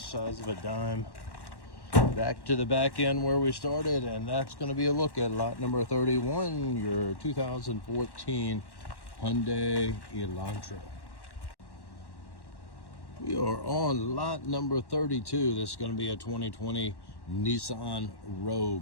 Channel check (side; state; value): right; late; 1.1 ms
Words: size of a dime. Back to the back end where we started, and that's going to be a look at lot number 31, your 2014 Hyundai Elantra. We are on lot number 32. This is going to be a 2020 Nissan